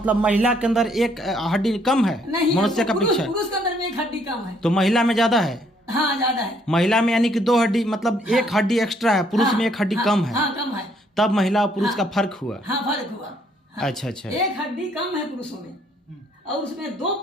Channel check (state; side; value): normal; both; correlation 0.67